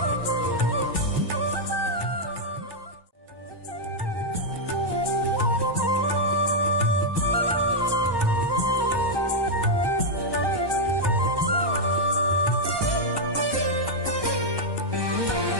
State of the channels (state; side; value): late; left; 1.2 ms